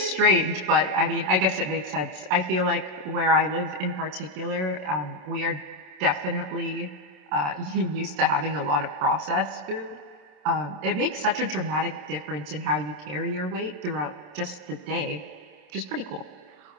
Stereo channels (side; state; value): left; late; 27 ms